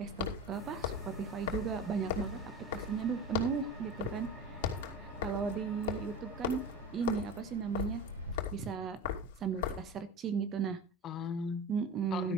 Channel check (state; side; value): normal; both; correlation 0.30